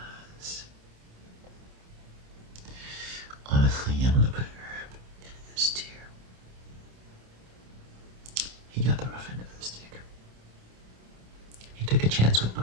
Honestly, I'm gonna put Herb in this tier. He got the rough end of the stick. He took a chance with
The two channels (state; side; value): late; left; 27 ms